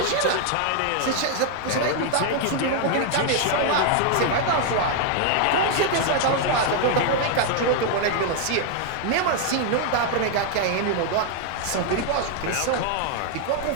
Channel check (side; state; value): both; different; correlation 0.00